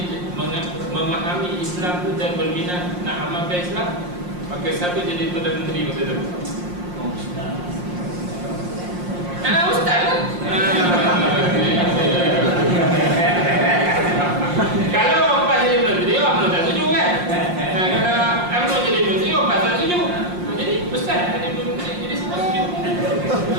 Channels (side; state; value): left; late; 5.6 ms